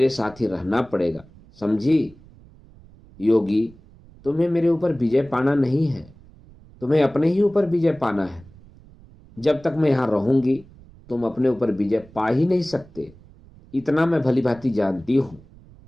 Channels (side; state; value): right; noise; rumble, 24 dB below the sound